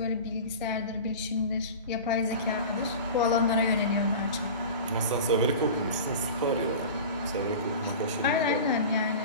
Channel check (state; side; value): inverted; both; correlation -0.34